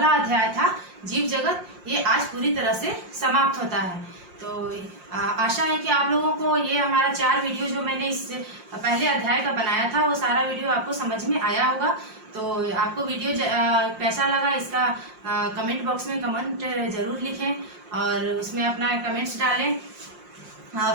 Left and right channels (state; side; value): late; left; 5.6 ms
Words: अध्याय था जीव जगत, ये आज पूरी तरह से समाप्त होता है। तो आशा है कि आप लोगों को ये हमारा 4 वीडियो जो मैंने इस पहले अध्याय का बनाया था वो सारा वीडियो आपको समझ में आया होगा। तो आपको वीडियो कैसा लगा इसका कमेंट बॉक्स में कमेंट जरूर लिखें और उसमें अपना कमेंट्स डालें।